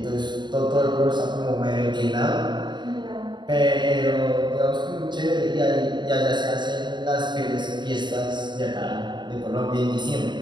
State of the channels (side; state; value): left; late; 0.22 ms